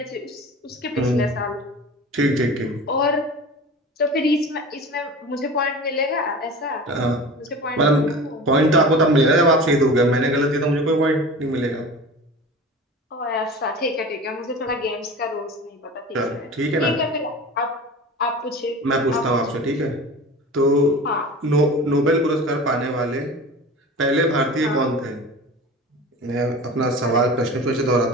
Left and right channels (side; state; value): both; normal; correlation 0.35